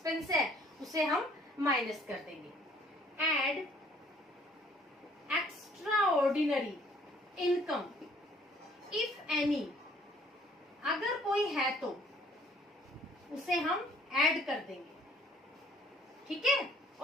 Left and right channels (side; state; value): both; normal; correlation 0.59